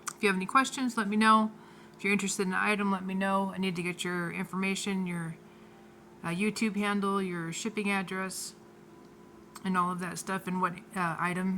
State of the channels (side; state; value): both; identical; correlation 1.00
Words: if you have any questions, let me know. If you're interested in an item, let me know. I need to get your information, your YouTube handle, your shipping address, and all of that stuff, and what